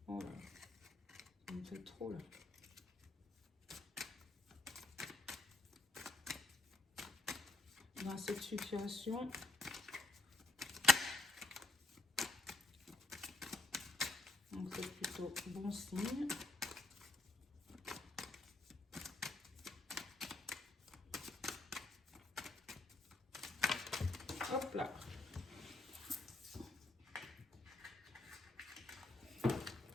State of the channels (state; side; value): quieter; right; 3.2 dB